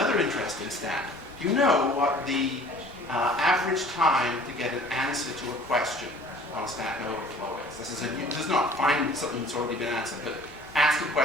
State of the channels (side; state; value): left; noise; rumble, 24 dB below the sound